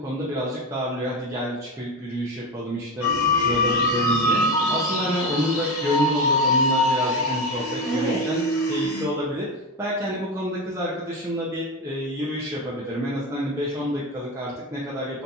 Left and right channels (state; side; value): normal; both; correlation 0.19